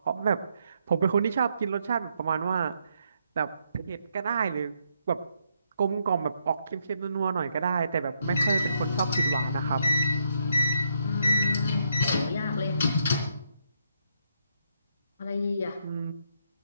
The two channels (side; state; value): both; inverted; correlation -0.76